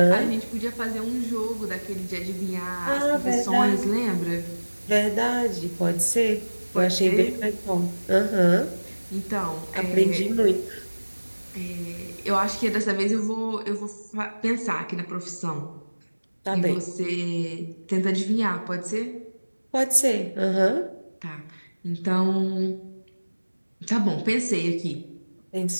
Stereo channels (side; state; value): both; inverted; correlation -1.00